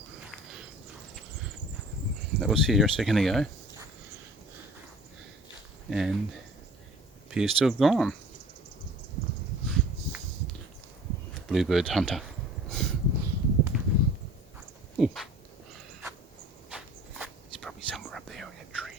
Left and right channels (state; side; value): normal; both; correlation 0.46